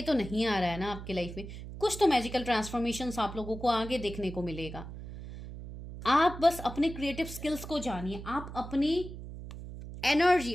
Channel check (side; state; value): right; noise; hum, 11 dB below the sound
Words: तो नहीं आ रहा है ना आपके लाइफ में, कुछ तो मैजिकल ट्रांसफॉर्मेशन आप लोगों को आगे देखने को मिलेगा। आप बस अपने क्रिएटिव स्किल्स को जानिए, आप अपनी एनर्जी,